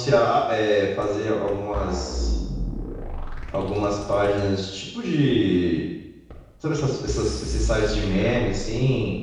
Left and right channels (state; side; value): identical; both; correlation 1.00